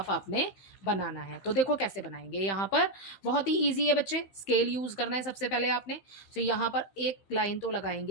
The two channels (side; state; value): right; late; 15 ms